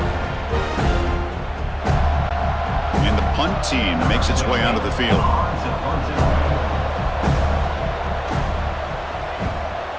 And the punt team makes its way onto the field.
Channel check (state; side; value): identical; both; correlation 1.00